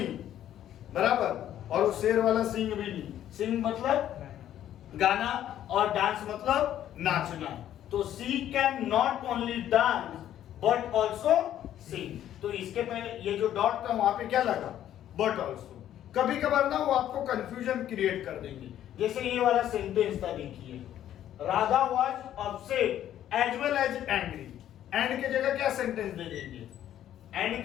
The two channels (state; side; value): quieter; right; 11.4 dB